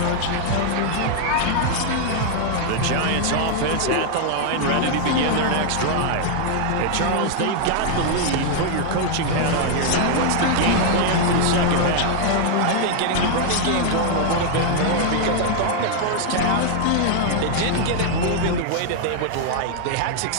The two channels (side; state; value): both; different; correlation 0.00